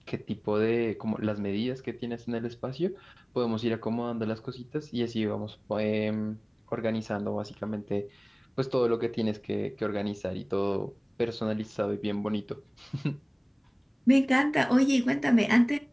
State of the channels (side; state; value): both; identical; correlation 1.00